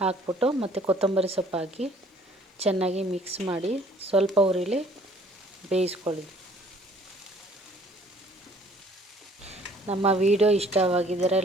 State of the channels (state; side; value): normal; both; correlation 0.57